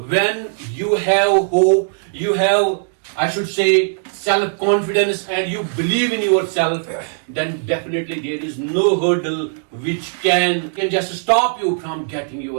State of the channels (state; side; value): silent; left; 67 dB below the other